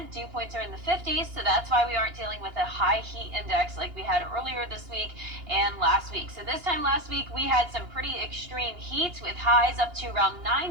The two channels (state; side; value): late; left; 2.8 ms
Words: Dew points are in the 50s, so that's why we aren't dealing with a high heat index like we had earlier this week and last week. So this time last week, we had some pretty extreme heat with highs up to around